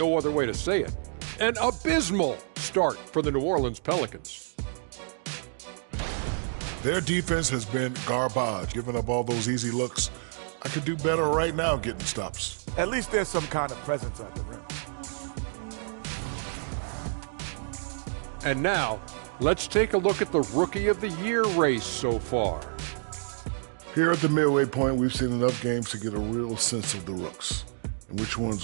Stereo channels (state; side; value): silent; left; digital silence